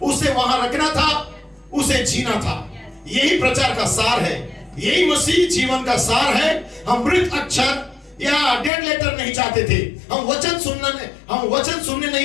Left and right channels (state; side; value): drops out; right; at 8.7 s